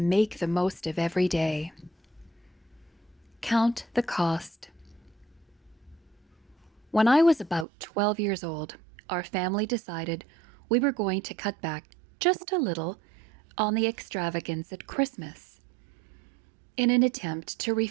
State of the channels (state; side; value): drops out; left; at 7.7 s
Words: make the most of every day. Count the cost. When I was about 12 years old, our family decided we were going to cut back just a little on the extravagance at Christmas. In an attempt to